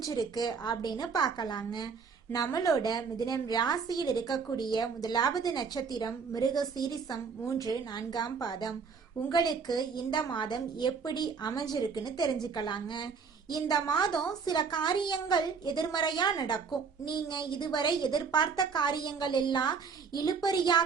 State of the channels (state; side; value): quieter; left; 5.6 dB